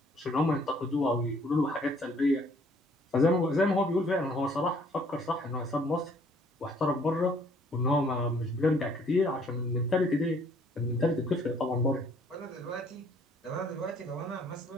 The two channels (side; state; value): both; normal; correlation 0.61